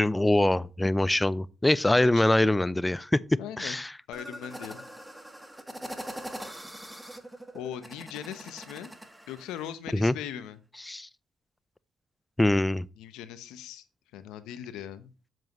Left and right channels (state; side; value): normal; both; correlation 0.98